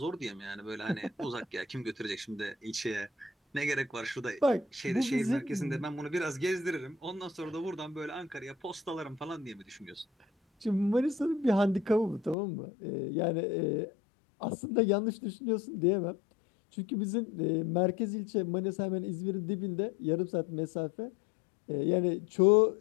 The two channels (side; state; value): right; drops out; at 12.4 s